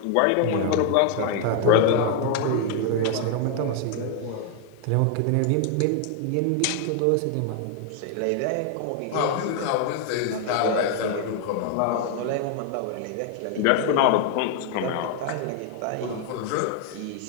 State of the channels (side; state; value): both; different; correlation 0.00